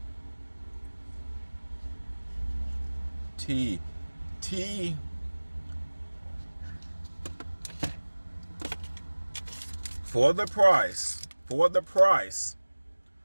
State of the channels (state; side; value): inverted; both; correlation -1.00